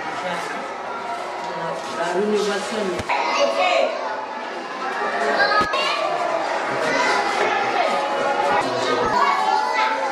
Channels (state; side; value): identical; both; correlation 1.00